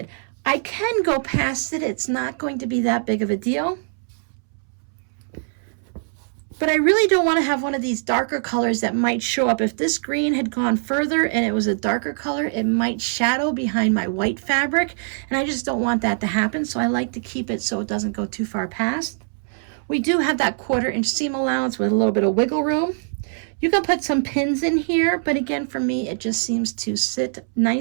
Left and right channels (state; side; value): silent; left; 64 dB below the other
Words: I can go past it. It's not going to be that big of a deal. But I really don't want to have one of these darker colors that might show up. If this green had gone further and it was a darker color, it might shadow behind my white fabric, and I just don't want that to happen, so I like to keep it so it doesn't go too far past. We do have that 1/4 inch seam allowance with a little bit of wiggle room. You can put some pins in here, but again, for me, it just seems to sit